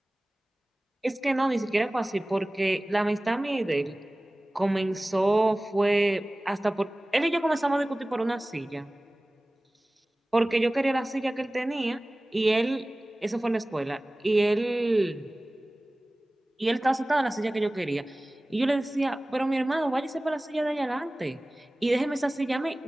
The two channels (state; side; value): normal; both; correlation 0.98